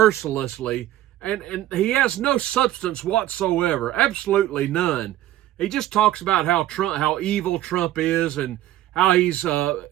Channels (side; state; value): left; quieter; 13.9 dB